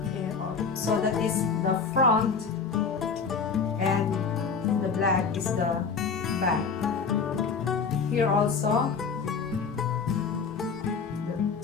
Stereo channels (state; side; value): quieter; right; 5.4 dB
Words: So that is the front, and the black is the back. Here also,